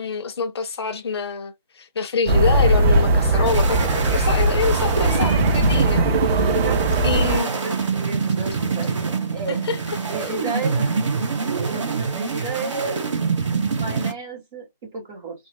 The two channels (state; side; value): inverted; both; correlation -0.56